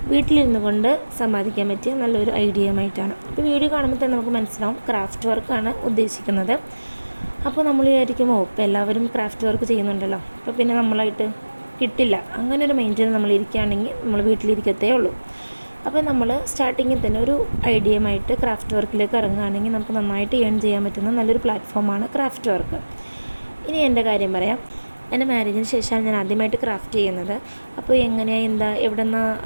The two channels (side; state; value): both; inverted; correlation -1.00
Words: വീട്ടിലിരുന്നു കൊണ്ട് സമ്പാദിക്കാൻ പറ്റിയ നല്ലൊരു ഐഡിയയുമായിട്ടാണ്. അപ്പോൾ വീഡിയോ കാണുമ്പോൾ തന്നെ നമുക്ക് മനസ്സിലാവും ക്രാഫ്റ്റ് വർക്കാണ് ഉദ്ദേശിക്കുന്നത്. അപ്പോൾ നമ്മൾ വിചാരിക്കുമോ ഇപ്പോൾ എല്ലാവരും ക്രാഫ്റ്റ് വർക്ക് ചെയ്യുന്നുണ്ടല്ലോ, അപ്പോൾ പിന്നെ നമ്മളായിട്ട് കിട്ടില്ല, അങ്ങനെ ഒരു മൈൻഡിൽ നമ്മൾ ഇരിക്കുകയാണെങ്കിൽ നമ്മൾ വീട്ടിലിരിക്കത്തേ ഉള്ളൂ. അപ്പോൾ നമ്മൾ സ്റ്റാർട്ടിങ്ങിൽ തന്നെ ഒരു ഐഡിയയുമായിട്ട് ക്രാഫ്റ്റ് വർക്കിലേക്ക് ഇറങ്ങുകയാണെങ്കിൽ നമുക്ക് നന്നായിട്ട് ഏൺ ചെയ്യാൻ പറ്റുന്ന നല്ലൊരു പ്ലാറ്റ്ഫോമാണ് ക്രാഫ്റ്റ് വർക്ക്. ഇനി എൻ്റെ കാര്യം പറയാം. എൻ്റെ മാരേജിന് ശേഷമാണ് ഞാൻ ആദ്യമായിട്ട് ക്രാഫ്റ്റ് ചെയ്യുന്നത്. അപ്പോൾ എങ്ങനെയാണ് എവിടെ